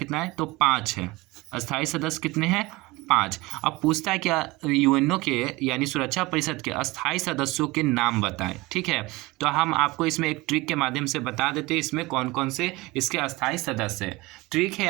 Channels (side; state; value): left; quieter; 21.4 dB